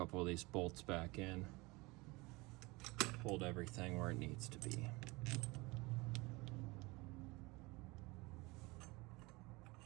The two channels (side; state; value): left; quieter; 23.9 dB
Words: of these bolts back in. Hold everything where it needs to be.